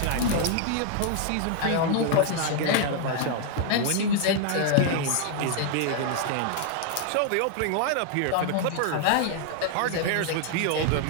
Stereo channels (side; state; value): both; different; correlation 0.00